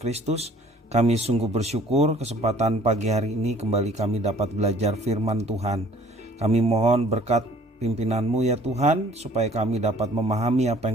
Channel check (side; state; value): both; normal; correlation 0.54